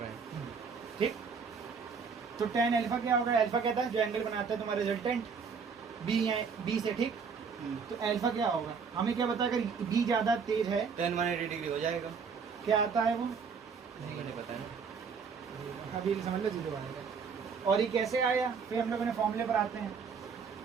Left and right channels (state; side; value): quieter; left; 5.8 dB